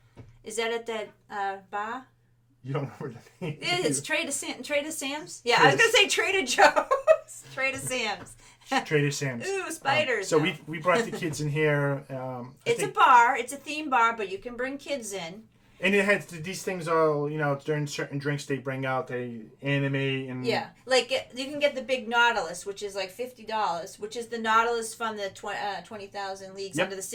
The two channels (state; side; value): identical; both; correlation 1.00